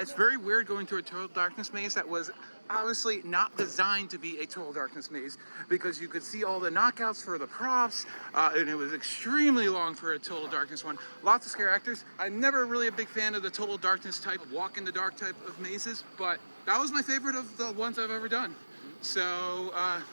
very weird going through a Total Darkness maze that was obviously not designed to be a Total Darkness maze, because you could see all the knockouts for the props, and it was extremely long for a Total Darkness one. Lots of scare actors. I'm never really a big fan of the Total Darkness type, walk in the dark type of mazes, but that was my favorite of the ones I've ever done. So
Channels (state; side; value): inverted; both; correlation -1.00